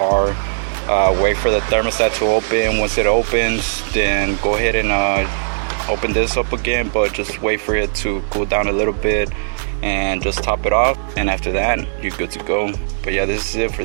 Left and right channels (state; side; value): silent; left; digital silence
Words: Wait for the thermostat to open. Once it opens, then go ahead and open this up again, but just wait for it to cool down a little bit and just top it off, and after that you're good to go. But yeah, this is it for